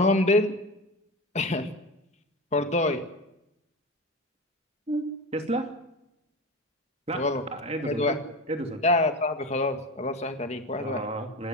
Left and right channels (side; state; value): both; normal; correlation 0.26